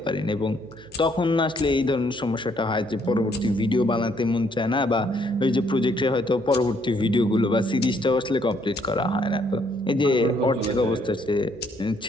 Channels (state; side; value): noise; right; hum, 26 dB below the sound